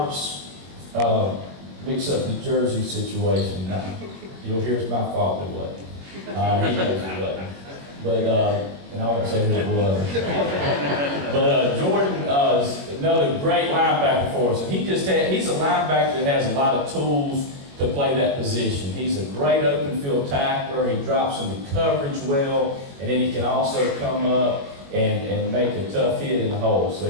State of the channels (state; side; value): late; left; 21 ms